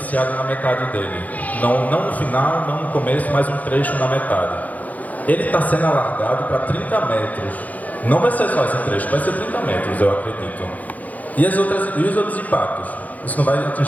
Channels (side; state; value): right; late; 0.077 ms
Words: na metade dele. Não no final, não no começo, mas um trecho na metade. Ele está sendo alargado para 30 metros. Não vai ser só esse trecho, vai ser 30 metros, eu acredito. E os outros impactos? Isso não vai